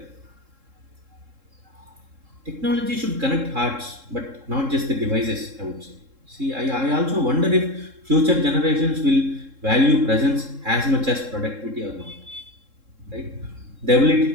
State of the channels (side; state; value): left; late; 3.7 ms